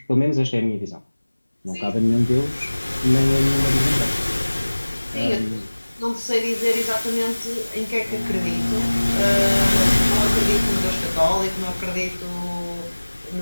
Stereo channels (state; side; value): inverted; both; correlation -1.00